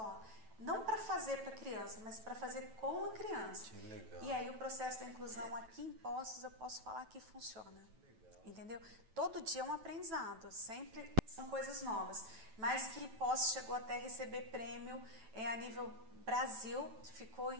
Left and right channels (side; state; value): left; late; 9.1 ms